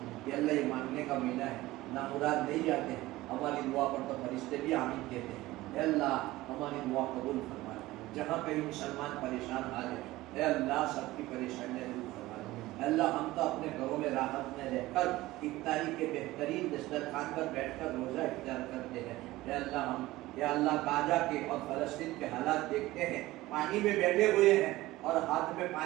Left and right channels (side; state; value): left; quieter; 17.9 dB